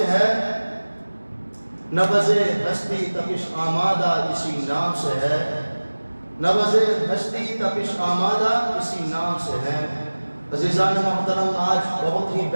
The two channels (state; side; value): inverted; both; correlation -1.00